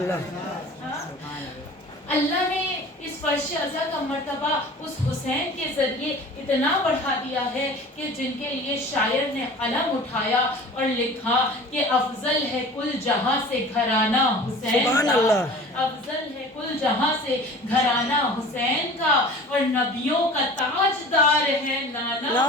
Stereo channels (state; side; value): normal; both; correlation 0.41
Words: اللہ نے اس فرش عزا کا مرتبہ اس حسین کے ذریعے اتنا بڑھا دیا ہے کہ جن کے لیے شاعر نے قلم اٹھایا اور لکھا کہ افضل ہے کل جہاں سے گھرانہ حسین سبحان کا، اللہ. افضل ہے کل جہاں سے گھرانہ حسین کا، اور نبیوں کا تاجدار ہے نانا